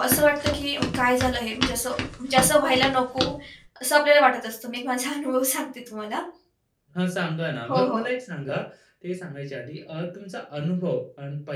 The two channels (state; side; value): identical; both; correlation 1.00